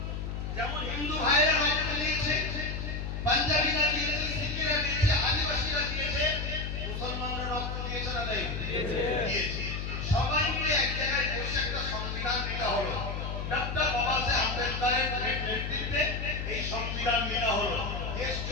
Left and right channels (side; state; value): left; noise; hum, 4 dB below the sound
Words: যেমন হিন্দু ভাইয়েরা রক্ত দিয়েছে, পাঞ্জাবিরা দিয়েছে, শিখেরা দিয়েছে, আদিবাসীরা দিয়েছে, মুসলমানরা রক্ত দিয়েছে না দেয়? দিয়েছে। সবাই মিলে এক জায়গায় বসে একটা সংবিধান নেওয়া হলো। ডক্টর বাবা সাহেব আম্বেদকরের নেতৃত্বে এই সংবিধান নেওয়া হলো। দেশ